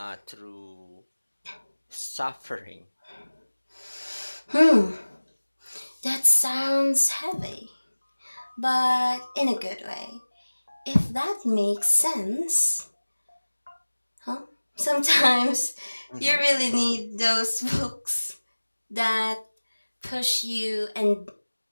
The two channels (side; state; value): both; inverted; correlation -1.00